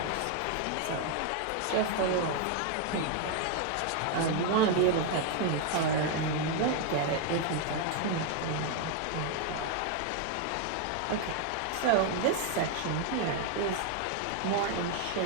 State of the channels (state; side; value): different; both; correlation 0.00